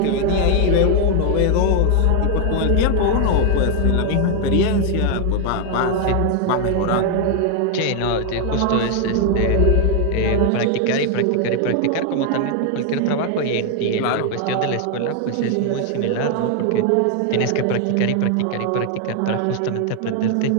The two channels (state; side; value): different; both; correlation 0.00